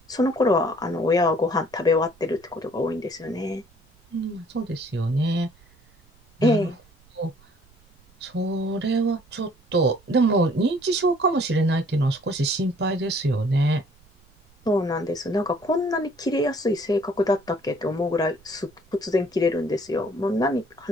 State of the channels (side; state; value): right; noise; rumble, 30 dB below the sound